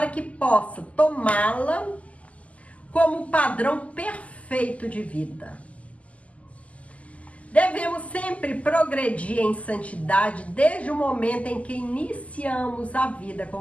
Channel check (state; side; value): late; right; 0.068 ms